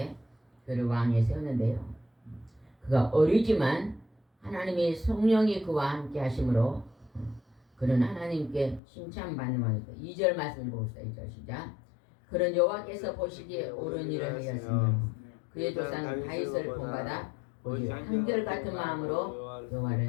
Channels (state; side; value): drops out; right; at 8.8 s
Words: 그를 왕에 세웠는데요. 그가 어리지만 하나님의 성령이 그와 함께 하심으로 그는 하나님께 칭찬받는 왕이다. 2절 말씀을 보겠습니다. 2절 시작. 그는 여호와께서 보시기에 옳은 일을 하였으며 그의 조상 다윗을 본받아 오직 한결같은 마음으로 여호와를